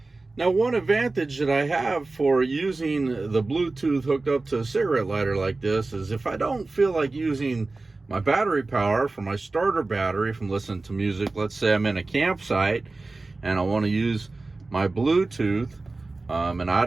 Now, one advantage that I have for using the Bluetooth hooked up to a cigarette lighter like this is if I don't feel like using my battery power for my starter battery from listening to music, let's say I'm in a campsite and I want to use my Bluetooth, and I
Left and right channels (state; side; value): quieter; left; 3.4 dB